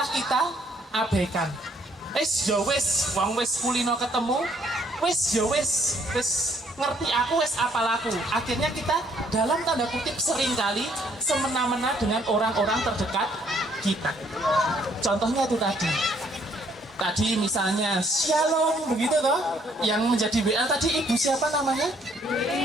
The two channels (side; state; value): both; normal; correlation 0.66